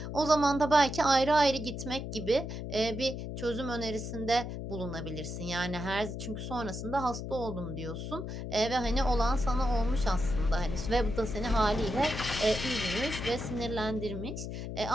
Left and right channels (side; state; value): left; noise; hum, 6 dB below the sound